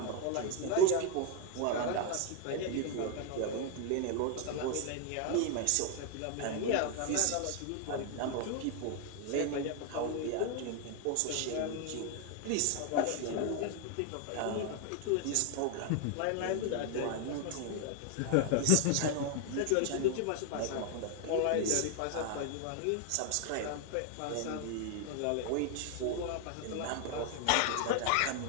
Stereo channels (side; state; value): both; different; correlation 0.00